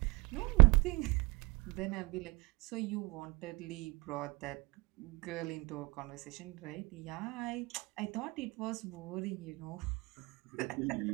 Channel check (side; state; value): left; quieter; 26.1 dB